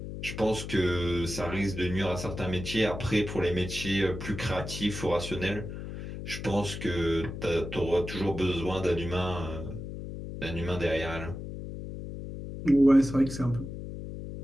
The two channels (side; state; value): left; noise; hum, 8 dB below the sound